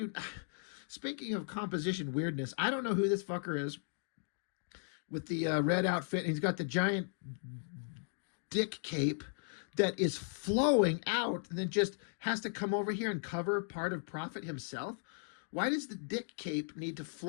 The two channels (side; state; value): right; silent; digital silence